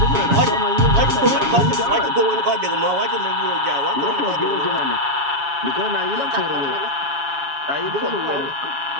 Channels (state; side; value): late; left; 7.2 ms